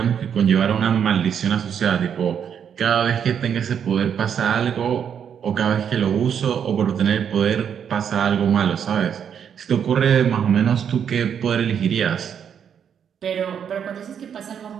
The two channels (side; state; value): left; quieter; 8.1 dB